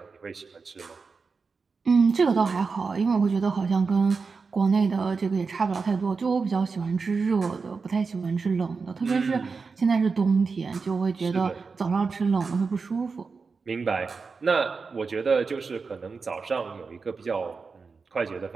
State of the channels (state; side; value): quieter; left; 4.8 dB